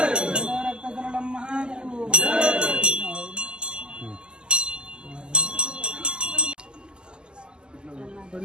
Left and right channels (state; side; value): late; left; 0.048 ms